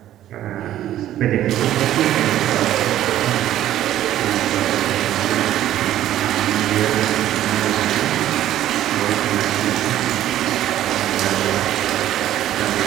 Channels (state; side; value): quieter; left; 12.6 dB